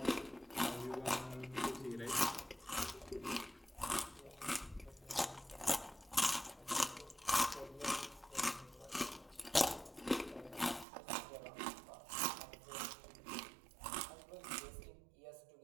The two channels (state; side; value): drops out; left; at 10.9 s